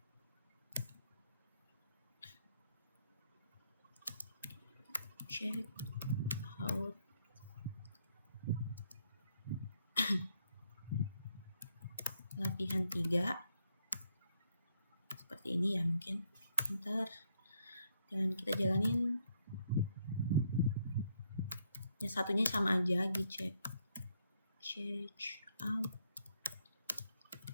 latihan 3 seperti ini ya, mungkin enter, dan kita jalanin. Ya satunya sama aja, check out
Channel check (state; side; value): inverted; both; correlation -0.73